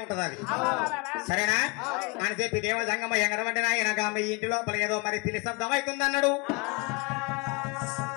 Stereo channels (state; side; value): quieter; right; 28.1 dB